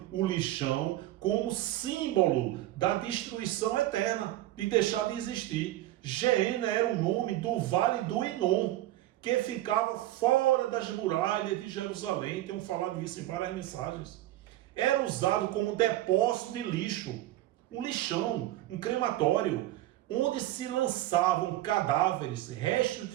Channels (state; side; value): quieter; left; 15.3 dB